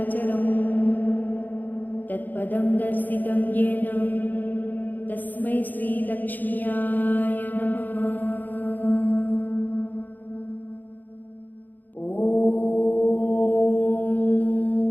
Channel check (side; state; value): right; late; 0.085 ms